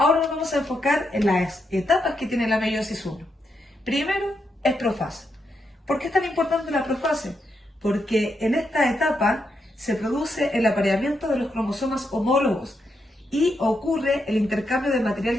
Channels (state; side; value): normal; both; correlation 0.82